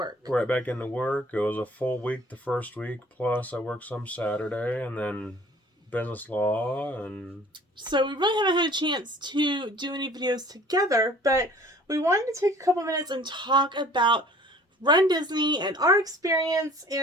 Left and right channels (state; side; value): normal; both; correlation 0.50